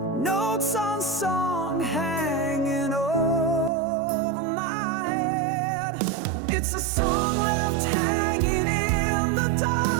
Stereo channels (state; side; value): drops out; left; at 3.7 s